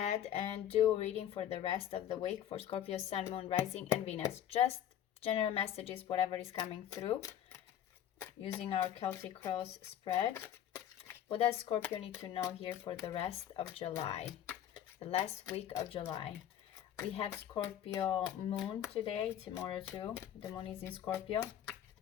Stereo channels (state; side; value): quieter; right; 10.5 dB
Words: and do a reading for the rest of the week for Scorpio, Sun, Moon, Rising, and Venus. Just general messages, whatever is coming through, using our Celtic Cross spread. What does Scorpio need to know here for the rest of July? The last week of July. We have Scorpio Moon today, tomorrow too. The Moon is in Scorpio.